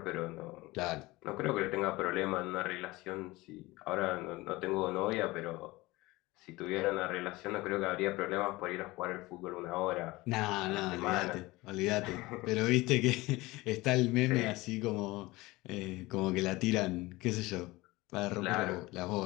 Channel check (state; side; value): quieter; right; 20.8 dB